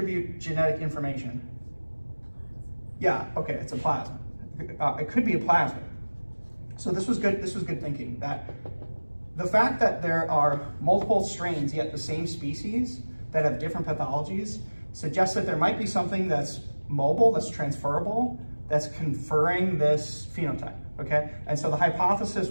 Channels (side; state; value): both; inverted; correlation -1.00